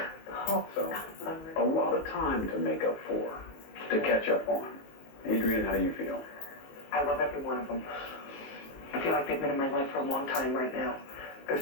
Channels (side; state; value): right; late; 19 ms